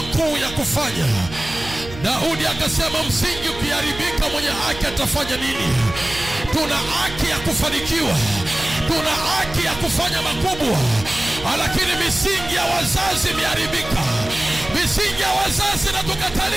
ya kufanya. Daudi akasema msingi ukiharibika mwenye haki atafanya nini? Tuna haki ya kufanikiwa, tuna haki ya kufanya makubwa, lakini misingi ya wazazi imeharibika. Misingi ya wazazi na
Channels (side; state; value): right; noise; hum, 14 dB below the sound